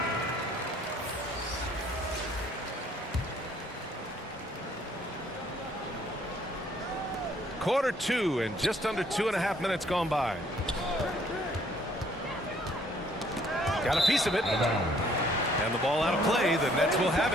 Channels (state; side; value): normal; both; correlation 0.62